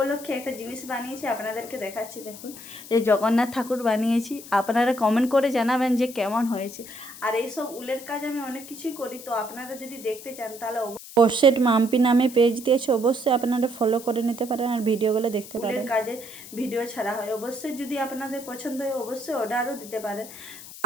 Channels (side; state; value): left; noise; hiss, 15 dB below the sound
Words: একটা জিনিস বানিয়েছি, আপনাদেরকে দেখাচ্ছি। দেখুন, এই জগন্নাথ ঠাকুর বানিয়েছি। আপনারা কমেন্ট করে জানাবেন যে কেমন হয়েছে। আর এইসব উলের কাজ আমি অনেক কিছুই করি, তো আপনারা যদি দেখতে চান তাহলে পোস্টেড মাম্পি নামে পেজ দিয়েছে, অবশ্যই আপনারা ফলো করে নিতে পারেন আর ভিডিওগুলো দেখতে পারেন। উলের কাজে ভিডিও ছাড়া হয়, অবশ্যই যদি আপনাদের পছন্দ হয় অবশ্যই অর্ডারও দিতে পারেন।